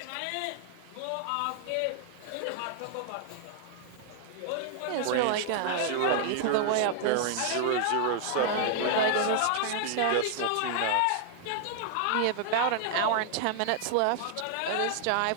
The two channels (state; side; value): different; both; correlation 0.00